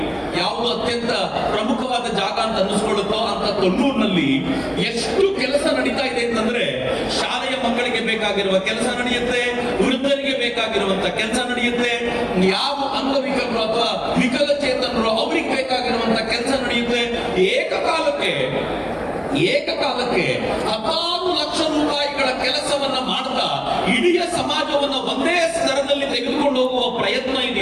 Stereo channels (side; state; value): both; identical; correlation 1.00